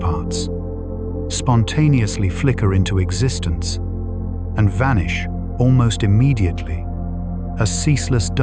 spontaneously flicker into existence and vanish almost immediately, a ceaseless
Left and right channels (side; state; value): both; identical; correlation 1.00